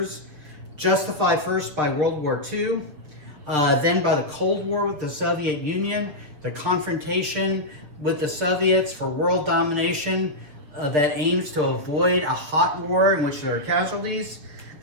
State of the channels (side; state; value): left; late; 6.7 ms